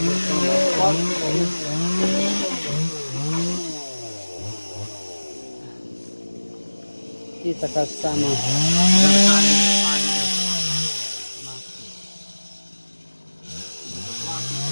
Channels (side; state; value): both; inverted; correlation -1.00